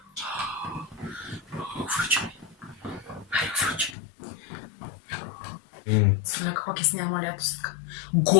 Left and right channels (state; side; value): drops out; right; at 3.9 s